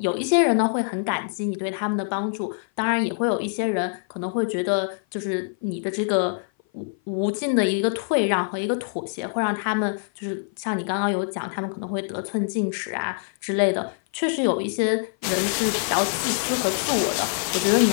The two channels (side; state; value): right; silent; 56 dB below the other